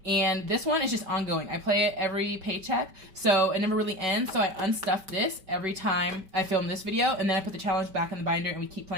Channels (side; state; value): left; late; 5.1 ms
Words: And this one is just ongoing. I play it every paycheck, so it never really ends. So I unstuff this every time I film this video, and then I put the challenge back in the binder and we keep